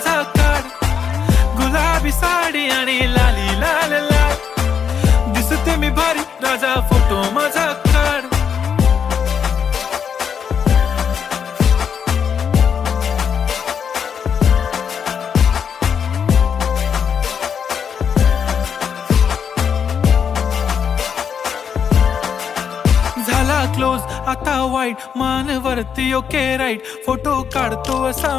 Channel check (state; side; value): quieter; right; 7.3 dB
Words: काढ. गुलाबी साडी आणि लाली लाल लाल, दिसते मी भारी राजा फोटो माझा काढ. झाला क्लोज आता वाईट, मान वरती ओके राईट. फोटो काढतो असा